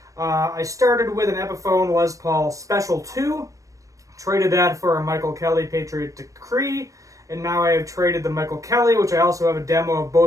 I started with an Epiphone Les Paul Special 2, traded that for a Michael Kelly Patriot Decree, and now I have traded the Michael Kelly, which I also have a demo of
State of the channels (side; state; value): left; late; 0.16 ms